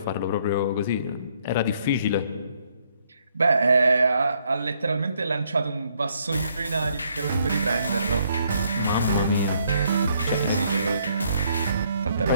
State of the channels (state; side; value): inverted; both; correlation -0.70